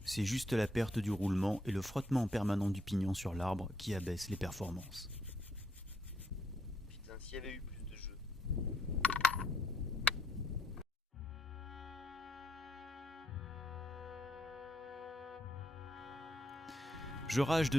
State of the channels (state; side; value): normal; both; correlation 0.75